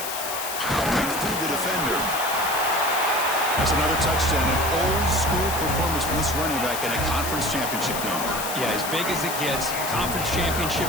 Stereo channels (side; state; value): left; noise; hiss, 5 dB below the sound